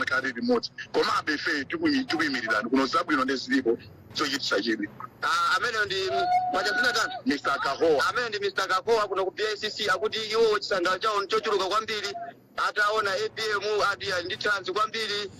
limodzi komabe ife tikuyimirirani kuno zabwino ndezilipo chochitisa chidwi amene ndi mwachazina tatu Mr. Kahowa amene ndi Mr. Kahowa kuno ku PICC akuti iwo chisangalo chawo chochuluka kwambiri ataona APM adi ndi chance kwambiri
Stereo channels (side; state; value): both; identical; correlation 1.00